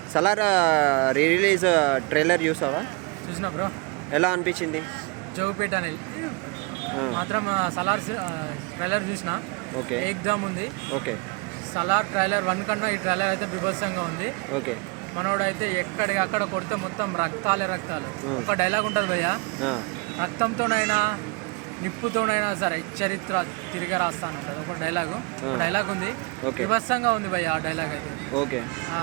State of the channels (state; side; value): quieter; left; 29.5 dB